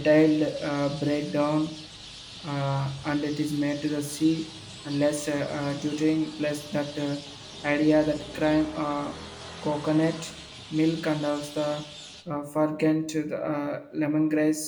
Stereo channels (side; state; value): both; identical; correlation 1.00